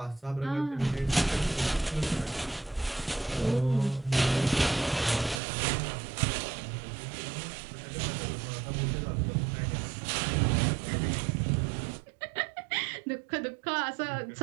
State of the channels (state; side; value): drops out; left; at 5.4 s